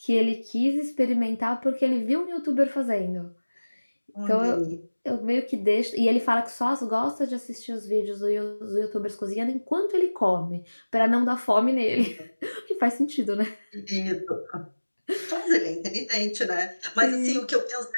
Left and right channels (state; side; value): inverted; both; correlation -1.00